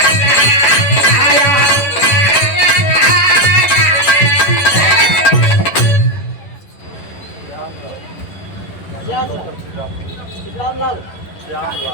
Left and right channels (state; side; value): late; right; 11 ms